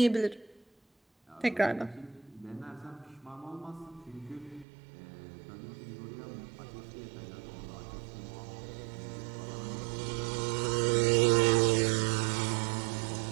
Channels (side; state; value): left; drops out; at 4.7 s